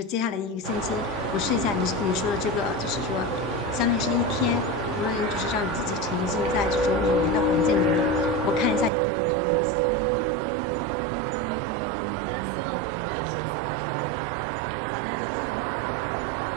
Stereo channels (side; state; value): left; drops out; at 8.9 s